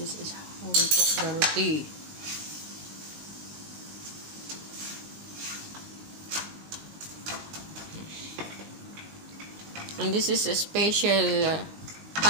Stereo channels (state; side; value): late; left; 20 ms